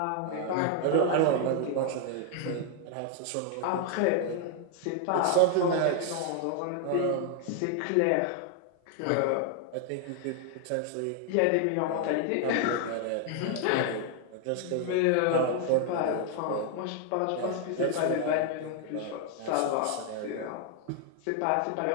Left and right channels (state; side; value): different; both; correlation 0.00